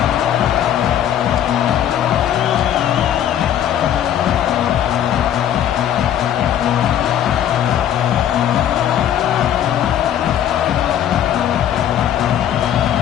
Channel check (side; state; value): right; quieter; 10.5 dB